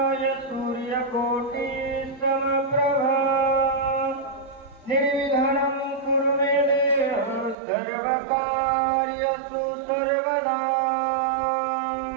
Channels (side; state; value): left; drops out; at 7.6 s